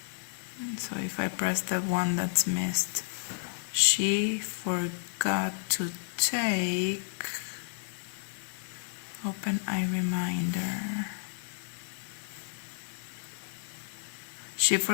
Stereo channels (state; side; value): silent; right; 57 dB below the other